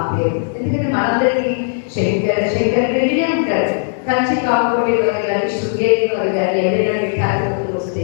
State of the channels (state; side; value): silent; right; digital silence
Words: పేరు. ఎందుకంటే మనందరికీ శంకర వినే ఉంటారు. కంచి కాకపోతే వారు కానీ, శృంగేరి వారు కానీ ఎవరైనా పీఠాధిపతులు వస్తే